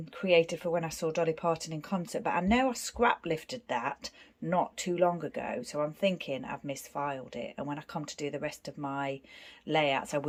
created for when I saw Dolly Parton in concert, but I know I scrap lifted that not too long ago, so I'm thinking I've misfiled it, and when I come to do the rest of my layouts I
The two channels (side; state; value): both; identical; correlation 1.00